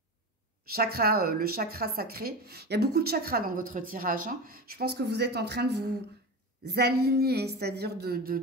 chakra, le chakra sacré, il y a beaucoup de chakras dans votre tirage. Hein. Je pense que vous êtes en train de vous aligner, c'est-à-dire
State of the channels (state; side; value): normal; both; correlation 0.26